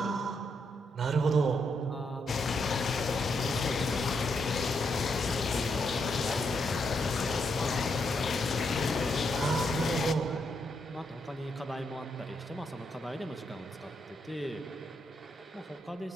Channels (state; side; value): normal; both; correlation 0.79